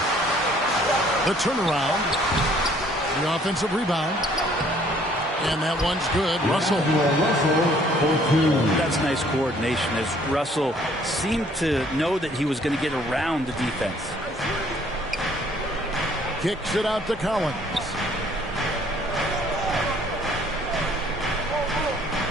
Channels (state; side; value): normal; both; correlation 0.60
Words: The turnaround. The offensive rebound. And that one's good. Russell. That's nice coordination as Russell seemed to know that he was going to get around the defense. Kicks it out to Collins.